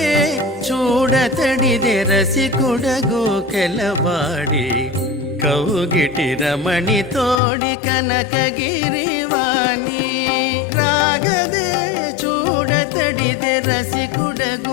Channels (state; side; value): drops out; right; at 7.4 s